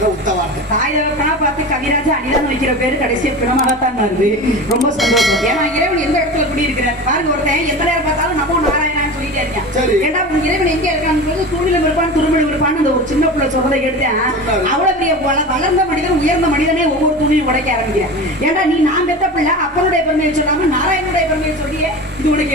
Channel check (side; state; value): both; normal; correlation 0.30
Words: உத்தவார்த்தை. தாயவர்களா பார்த்து கவிராஜ அனிதான் வைக்கிற பேரு கடைசியா பிணமாகத்தான் வருது. ரொம்ப சந்தோஷம். ஏன்னா இறைவன் எந்த இடத்துல குடி இருக்கிறார் பாருங்க. ஒருத்தன் எந்த நேரம் பார்த்தாலும் நமோ நாராயணான்னு சொல்லிட்டே இருக்கேன். ஏன்னா இறைவன் எங்க இருக்கான்னு தூணிலும் இருப்பான் துருமலும் இருப்பான்னு அந்த ஒரு சின்ன பிள்ளை சொல்றதை எடுத்தேன். அவ்வளவு பெரிய வளர்ந்த மனிதன் உயர்ந்த மனிதனே ஒவ்வொரு துணியும் உடைக்க ஆரம்பிக்கிறேன். ஏன்னா நீ நான் பெத்த பிள்ளை அப்பனுடைய பெருமையை சொல்லாம நாராயணனுடைய பெருமையை சொல்லியே இது உனக்கு